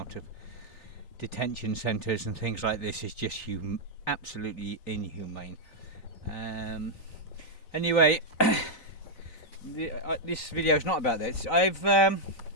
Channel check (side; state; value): right; late; 3.9 ms